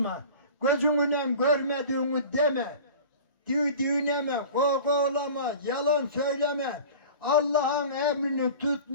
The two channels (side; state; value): both; inverted; correlation -0.39